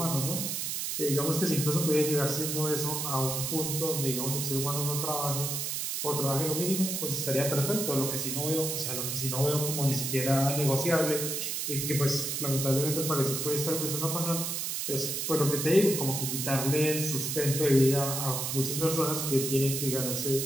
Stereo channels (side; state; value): right; noise; hiss, 2 dB below the sound